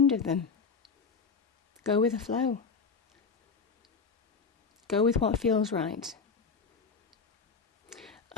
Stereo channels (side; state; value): right; quieter; 5.2 dB